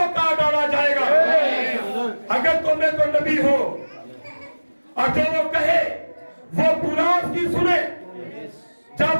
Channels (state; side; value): inverted; both; correlation -1.00